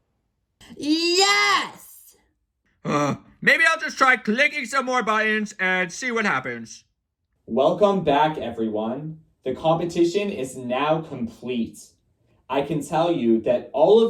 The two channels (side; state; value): both; identical; correlation 1.00